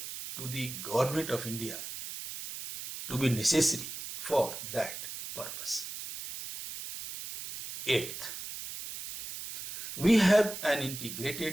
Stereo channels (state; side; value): noise; right; hiss, 9 dB below the sound